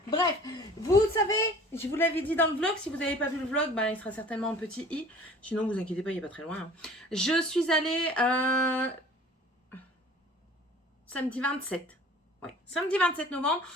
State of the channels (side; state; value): both; normal; correlation 0.47